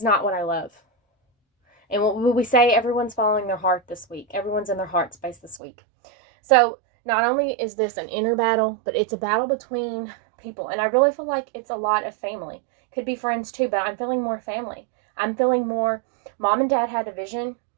not what I love. And what we say, everyone's following their heart this week. Everyone's in their heart space this week. So not only is this an inner battle, but it's a battle between people. And I really feel like it's a lot of family. Could be friends too, but I'm feeling more family. I'm feeling more, mom and dad had a vision,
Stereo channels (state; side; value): drops out; left; at 5.6 s